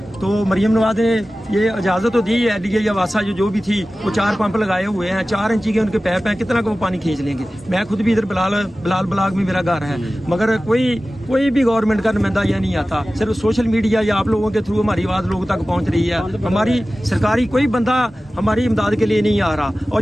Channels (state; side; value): normal; both; correlation 0.96